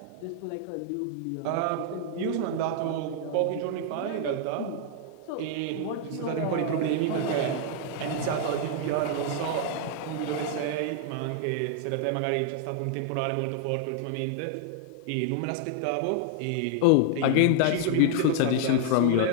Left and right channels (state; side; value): different; both; correlation -0.01